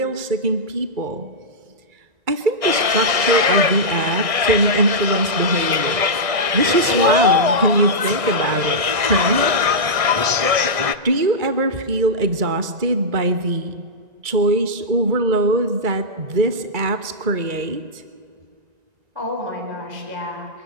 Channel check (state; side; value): late; left; 1.6 ms